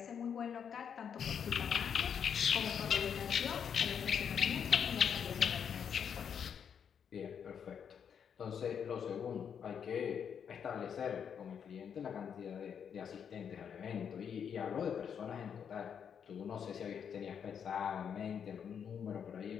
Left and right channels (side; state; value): right; quieter; 7.6 dB